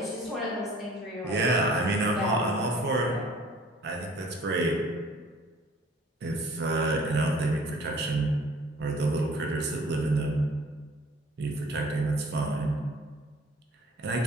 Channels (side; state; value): both; normal; correlation 0.52